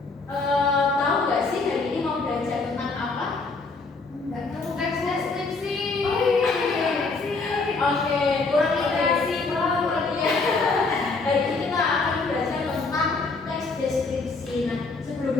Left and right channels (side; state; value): right; quieter; 3.9 dB